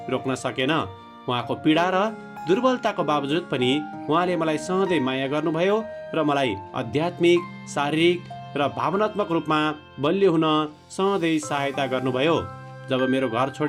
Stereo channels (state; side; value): identical; both; correlation 1.00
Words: रोक्न सकेन। उहाँको पीडा र दुर्बलताको बावजुद पनि उहाँले मलाई सधैँ माया गर्नुभयो र मलाई आध्यात्मिक, शारीरिक र भावनात्मक रूपमा बलियो हुन सधैँ सहायता गर्नुभयो। जब मेरो घर